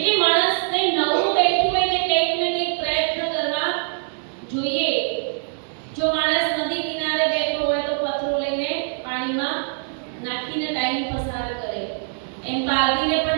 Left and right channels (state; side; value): silent; left; digital silence